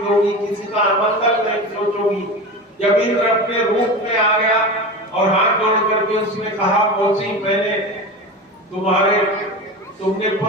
किसी का अमंगल नहीं सोचोगी। जब इंद्र अपने रूप में आ गया और हाथ जोड़ करके उसने कहा, मौसी मैंने तुमने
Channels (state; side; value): normal; both; correlation 0.27